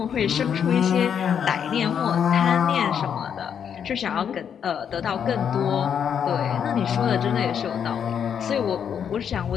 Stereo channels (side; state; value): right; quieter; 8.0 dB